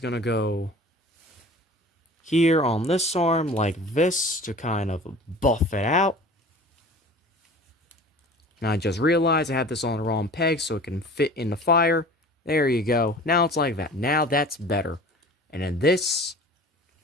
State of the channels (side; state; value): both; normal; correlation 0.42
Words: to go here on this arm like this to kind of buff it out. And I just realized I had this on the wrong peg so it can fit in the fire. There you go. Now it's like that. Now that's better. And then this